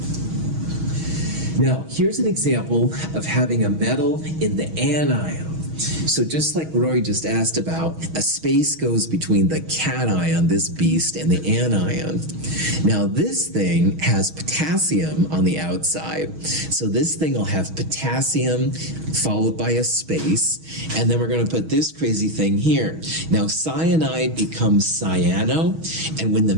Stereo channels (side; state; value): left; late; 6.3 ms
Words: Now, here's an example of having a metal in the anion. So just like Roy just asked about, a space goes between the cation, this beast, and the anion. Now this thing has potassium on the outside. So this thing will have potassium followed by a space, and then we're going to put this crazy thing here. Now cyanide becomes cyano, and when the